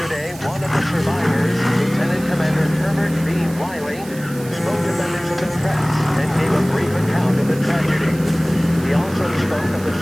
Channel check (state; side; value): noise; right; hiss, 18 dB below the sound